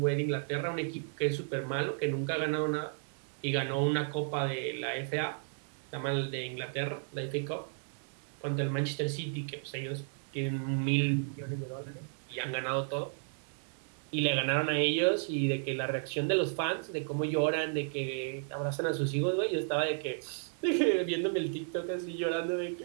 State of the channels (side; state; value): left; silent; digital silence